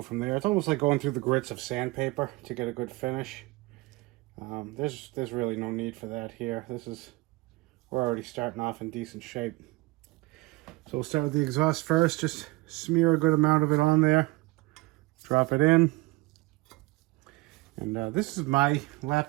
from there. It's almost like going through the grits of sandpaper to get a good finish. There's really no need for that here. We're already starting off in decent shape. So we'll start with the exhaust first. Just smear a good amount of it on there. Drop it in. And this is my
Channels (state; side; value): quieter; left; 22.3 dB